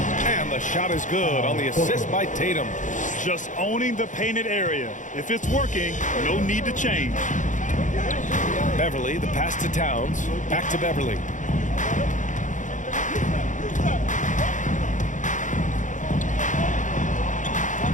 And the shot is good on the assist by Tatum. Just owning the painted area. If it's working, no need to change. Beverley, the pass to Towns. Back to Beverley.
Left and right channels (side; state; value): right; late; 0.37 ms